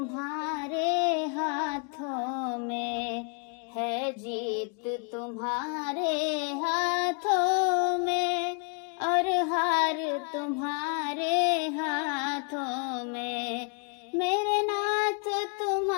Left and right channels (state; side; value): quieter; right; 39.4 dB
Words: हाथों में है, जीत तुम्हारे हाथों में और हार तुम्हारे हाथों में। मेरे नाथ